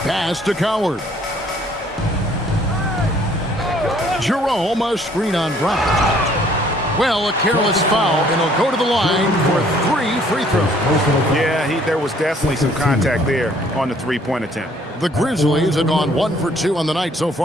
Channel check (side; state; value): both; normal; correlation 0.61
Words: Pass to Coward. Jerome, a screen on Brown. Well, a careless foul, and he'll go to the line for 3 free throws. Yeah, there was definitely some contact there on the three-point attempt. The Grizzlies have gone 1 for 2 on the night so